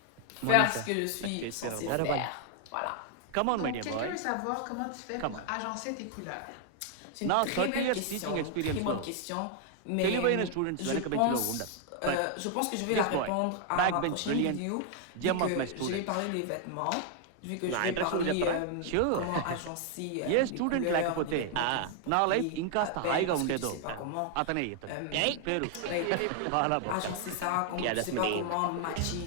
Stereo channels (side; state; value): both; different; correlation 0.00